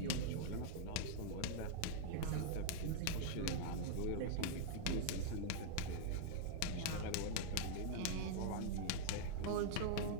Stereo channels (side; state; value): both; different; correlation -0.01